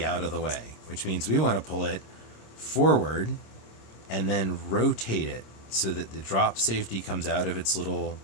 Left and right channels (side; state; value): right; late; 26 ms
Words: out of the way, which means we want to pull it forward and then rotate it so that the drop safety comes out of its little